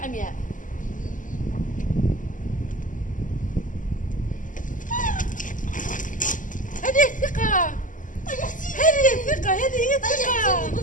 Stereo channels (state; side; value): late; right; 0.38 ms